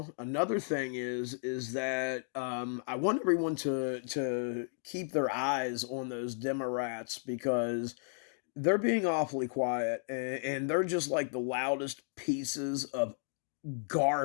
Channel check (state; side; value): silent; right; digital silence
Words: Another thing is that I want everyone to keep their eyes on those Democrats because they're being awfully quiet and they're just like the loudest pieces of